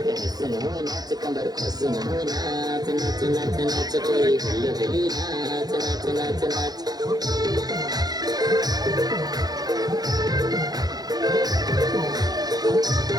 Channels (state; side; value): late; left; 0.19 ms